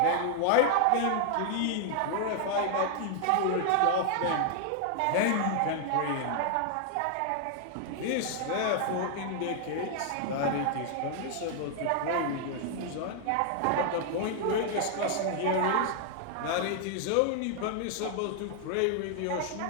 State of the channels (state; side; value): different; both; correlation 0.00